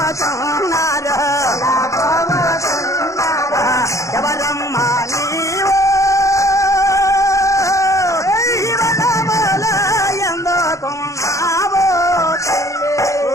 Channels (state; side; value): late; right; 0.15 ms